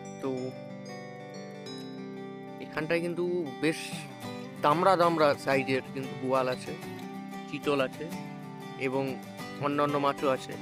তো এখানটায় কিন্তু বেশ দামড়া দামড়া সাইজের কিন্তু বোয়াল আছে, চিতল আছে এবং অন্যান্য মাছও আছে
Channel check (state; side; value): identical; both; correlation 1.00